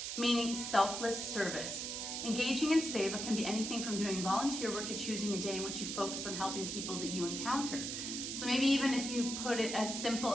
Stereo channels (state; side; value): noise; right; hiss, 4 dB below the sound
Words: meaning selfless service. Engaging in seva can be anything from doing volunteer work to choosing a day in which you focus on helping people that you encounter. So maybe even if you put it as simple